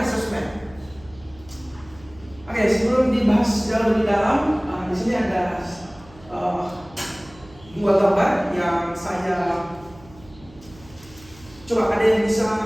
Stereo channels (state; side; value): noise; right; hum, 23 dB below the sound